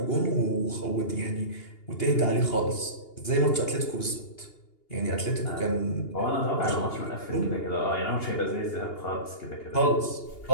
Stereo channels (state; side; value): late; right; 2.8 ms